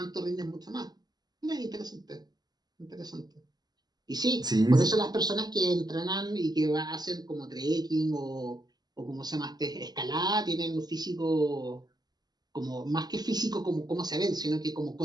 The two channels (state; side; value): late; left; 0.20 ms